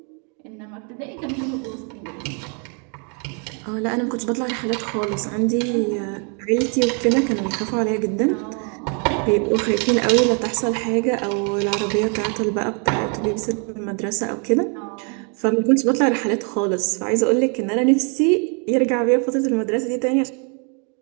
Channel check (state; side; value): quieter; left; 38.1 dB